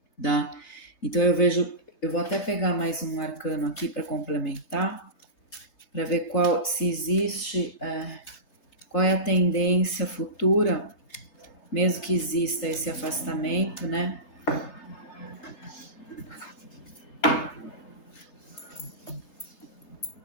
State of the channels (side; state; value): right; late; 3.3 ms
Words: tá? Então eu vou até pegar mais um arcano aqui para complementar, para ver se existe, qual é a tendência futura, mesmo que exista esse afastamento, né?